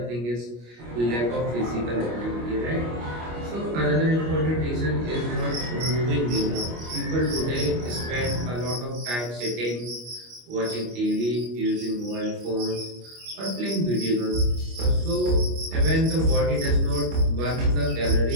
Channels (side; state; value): left; late; 25 ms